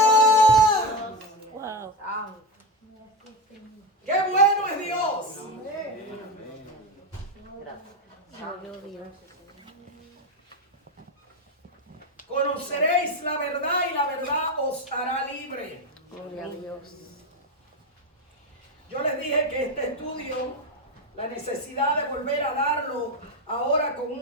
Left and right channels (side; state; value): both; normal; correlation 0.14